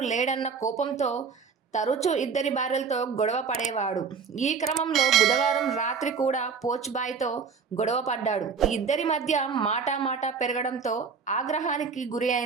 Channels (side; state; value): left; quieter; 5.8 dB